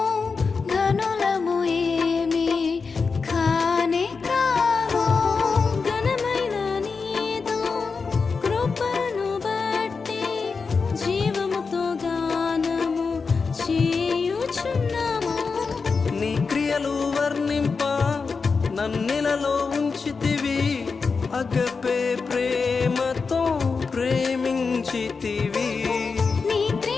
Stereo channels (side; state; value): right; quieter; 4.8 dB